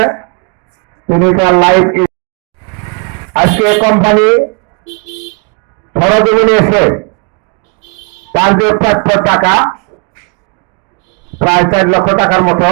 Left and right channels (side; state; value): left; quieter; 34.0 dB